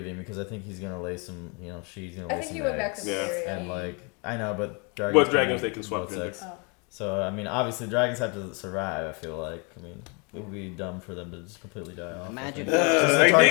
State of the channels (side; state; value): right; quieter; 33.5 dB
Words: because I think he's gonna lay some, she's gonna I lay think some he went back eggs. to Syria. And like I know, but dragons. What dragons they can both swap gender. sex. So I mean, obviously dragons have to survive. I feel like it would be dumb for them to just completely die off. Imagine. Since the